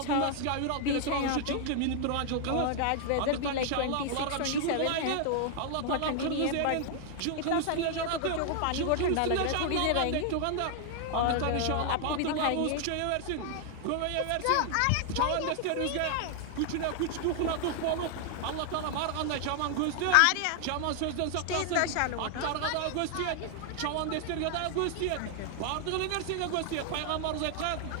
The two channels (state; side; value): different; both; correlation 0.00